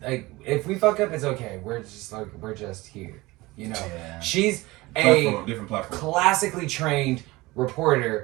like, if we fuck up, it's okay. We're just here. Yeah. She's a Different platform. classically trained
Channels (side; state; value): left; quieter; 21.0 dB